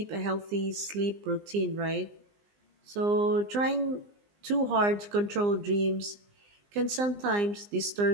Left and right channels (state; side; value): late; left; 20 ms